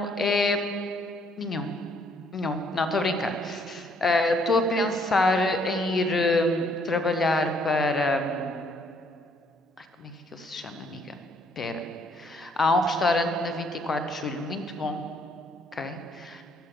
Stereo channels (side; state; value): both; normal; correlation 0.66